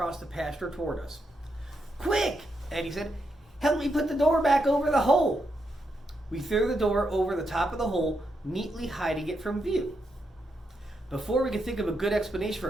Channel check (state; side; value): normal; both; correlation 0.82